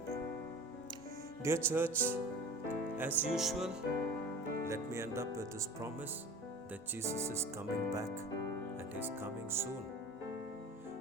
you. Dear church, as usual, let me end up with this promise that Jesus is coming back and He's coming soon.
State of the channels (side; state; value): both; normal; correlation 0.38